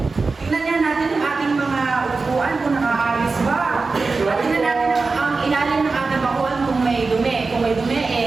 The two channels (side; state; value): left; quieter; 4.1 dB